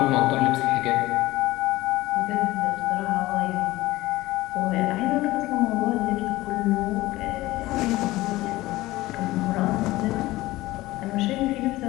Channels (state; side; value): quieter; right; 18.2 dB